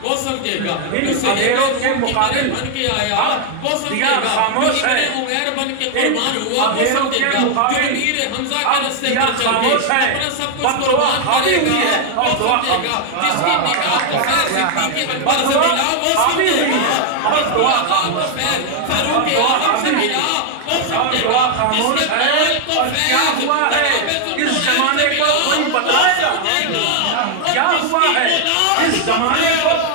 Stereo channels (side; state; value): both; different; correlation 0.00